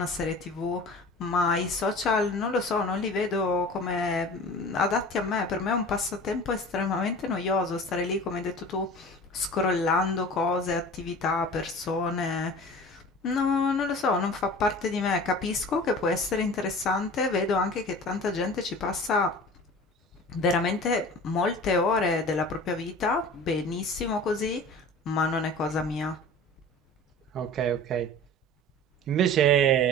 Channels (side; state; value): both; normal; correlation 0.40